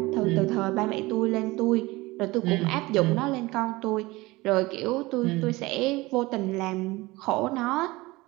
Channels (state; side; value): quieter; left; 21.1 dB